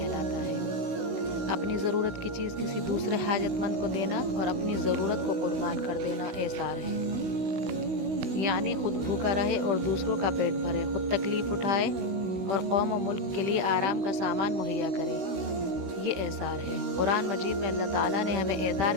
ہے۔ اپنی ضرورت کی چیز کسی دوسرے حاجت مند کو دینا اور اپنی ضرورت کو قربان کر دینا ایثار ہے۔ یعنی خود بھوکا رہے اور دوسروں کا پیٹ بھرے، خود تکلیف اٹھائے اور قوم و ملک کے لیے آرام کا سامان مہیا کرے، یہ ایثار ہے۔ قرآن مجید میں اللہ تعالیٰ نے ہمیں ایثار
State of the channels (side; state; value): left; late; 16 ms